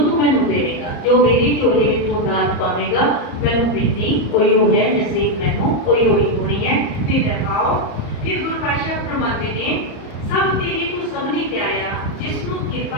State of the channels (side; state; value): right; late; 34 ms